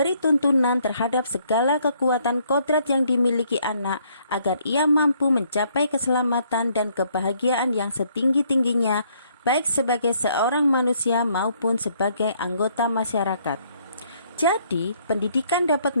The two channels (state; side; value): inverted; both; correlation -0.67